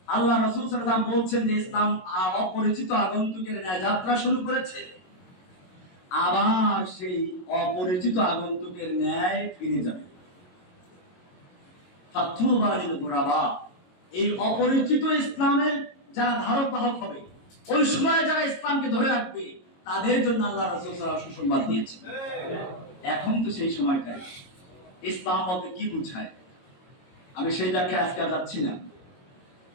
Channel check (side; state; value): right; late; 22 ms